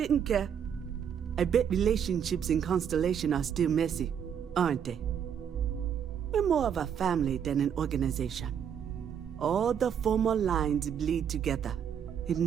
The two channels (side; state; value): left; quieter; 8.2 dB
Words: care. I bet relationships in Constellation are still messy, aren't they? We're more of a family than an organization. All the former lines bleed together. It